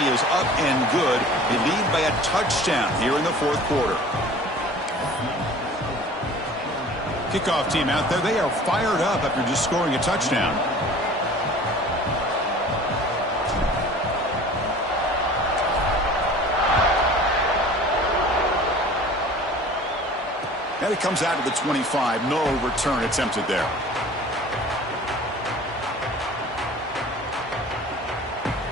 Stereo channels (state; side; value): normal; both; correlation 0.44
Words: is up and good. They lead by a touchdown here in the fourth quarter. Kickoff team out there. They are fired up after just scoring a touchdown. And it comes out to the 25. No return attempted there.